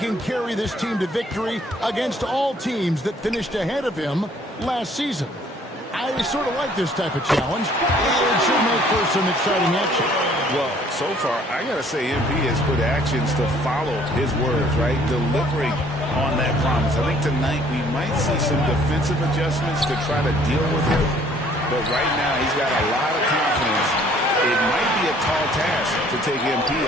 carry this team to victory against all teams that finished ahead of him last season. I sort of like this type of challenge. It should make for some exciting action. Well, so far, I got to say MP has put actions to follow his words, right? Delivering on that promise. I think tonight we might see some defensive adjustments to try to deal with him. But right now, he's got a lot of confidence. It might be a tall task to take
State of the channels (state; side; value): normal; both; correlation 0.59